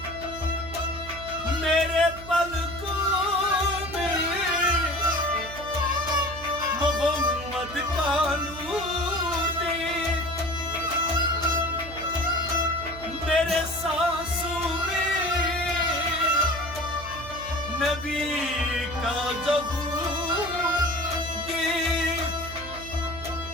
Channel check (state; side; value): noise; right; hum, 14 dB below the sound